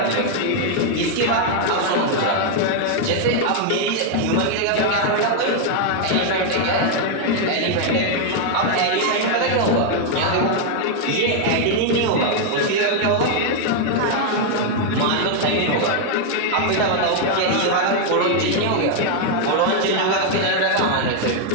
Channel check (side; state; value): both; different; correlation 0.00